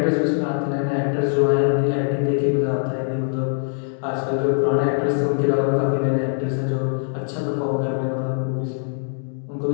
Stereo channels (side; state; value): right; silent; digital silence